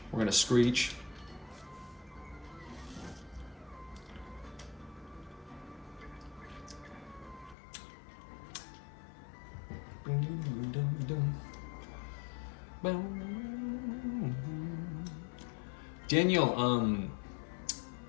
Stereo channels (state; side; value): drops out; right; at 7.6 s